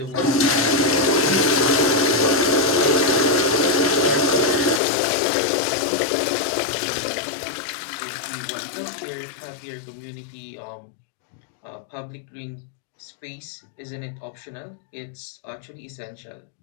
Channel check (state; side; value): drops out; right; at 4.8 s